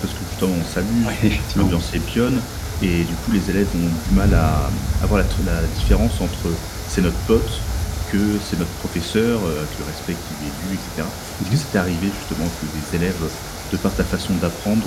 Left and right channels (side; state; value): both; identical; correlation 1.00